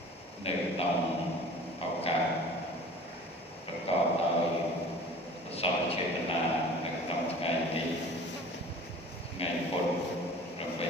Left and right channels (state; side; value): normal; both; correlation 0.44